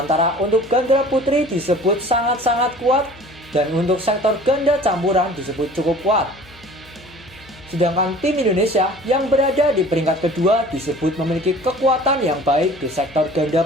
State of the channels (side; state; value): left; noise; hum, 24 dB below the sound